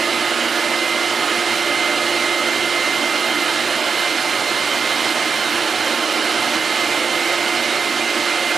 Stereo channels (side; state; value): left; quieter; 5.5 dB